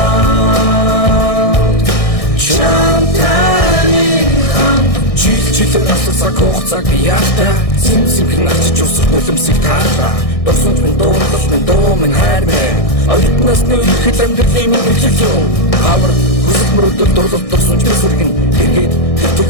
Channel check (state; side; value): late; right; 1.6 ms